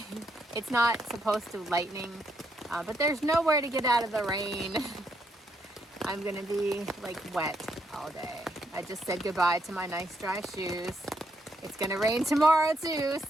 It's not supposed to lightning, but there's nowhere to get out of the rain. I'm gonna be like wet all day. I just said goodbye to my nice dry shoes. It's gonna rain tomorrow too,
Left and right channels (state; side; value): normal; both; correlation 0.77